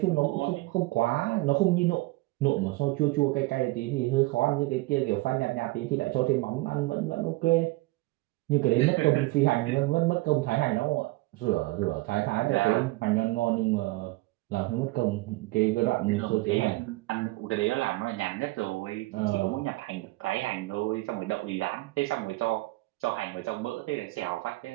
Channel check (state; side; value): quieter; left; 21.0 dB